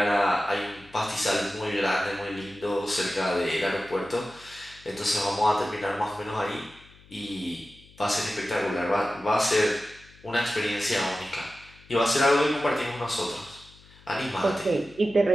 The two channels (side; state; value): left; noise; hum, 25 dB below the sound